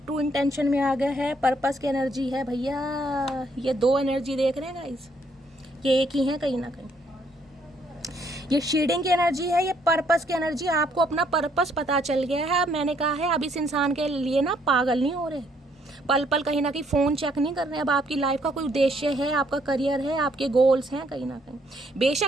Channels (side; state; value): both; normal; correlation 0.69